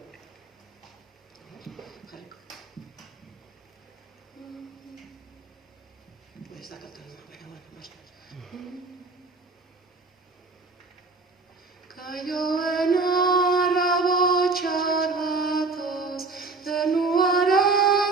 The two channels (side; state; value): left; quieter; 3.9 dB